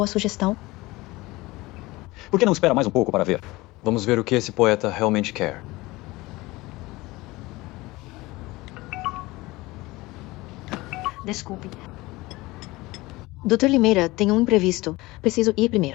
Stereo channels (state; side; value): quieter; right; 20.7 dB